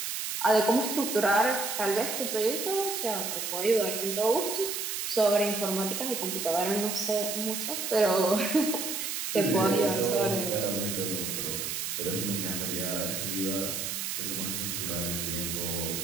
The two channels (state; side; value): noise; right; hiss, 3 dB below the sound